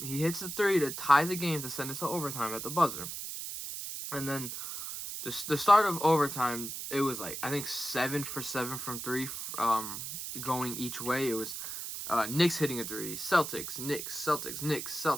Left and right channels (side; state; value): right; noise; hiss, 6 dB below the sound